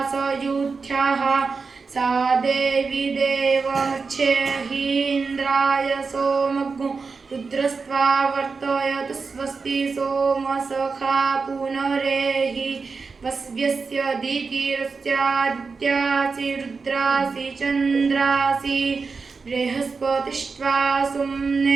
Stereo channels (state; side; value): quieter; left; 4.7 dB